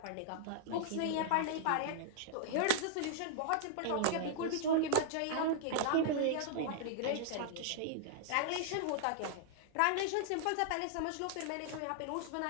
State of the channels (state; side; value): different; both; correlation -0.01